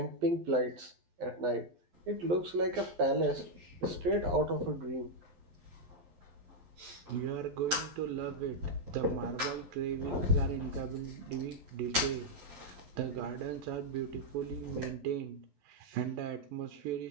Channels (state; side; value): late; left; 11 ms